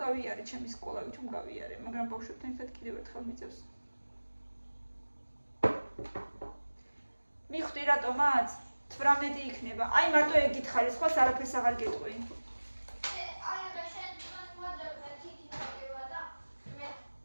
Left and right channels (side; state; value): both; inverted; correlation -1.00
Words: გავიარე ჩემი სკოლა, ვითომ გავიარე, მაგრამ ბავშვებთან ერთად კიდევ ერთხელ მიწევს. მიხვდი რატომაც 18 იქნება. აი მარტო ეგ გითხარი, სხვა არაფერს აღარ გეტყვი. აი რა შენ მოძებნა თითი ნაკება და მე